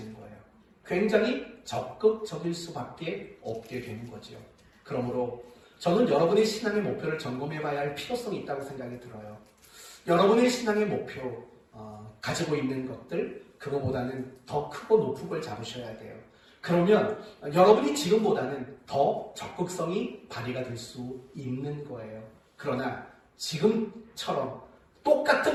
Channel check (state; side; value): identical; both; correlation 1.00